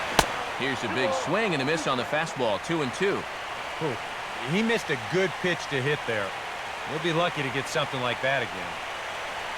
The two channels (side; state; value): both; identical; correlation 1.00